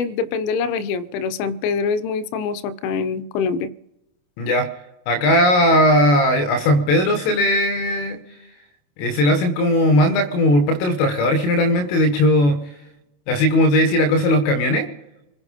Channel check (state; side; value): late; right; 28 ms